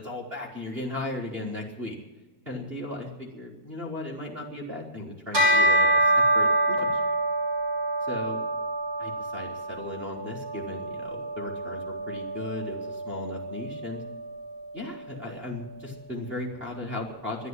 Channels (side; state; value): left; late; 5.4 ms